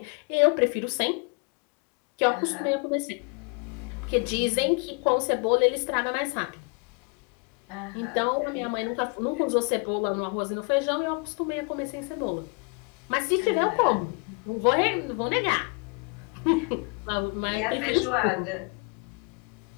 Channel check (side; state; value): right; quieter; 34.3 dB